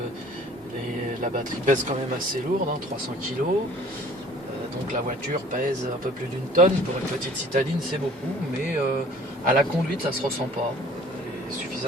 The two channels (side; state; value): both; normal; correlation 0.52